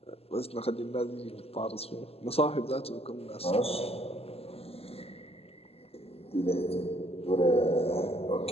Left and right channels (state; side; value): late; right; 0.29 ms